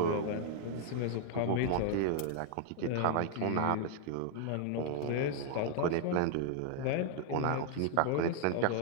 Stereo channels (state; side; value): different; both; correlation 0.00